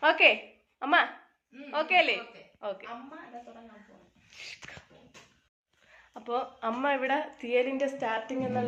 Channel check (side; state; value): both; identical; correlation 1.00